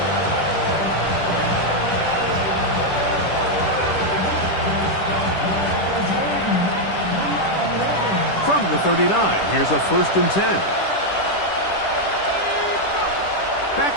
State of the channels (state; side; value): late; right; 10 ms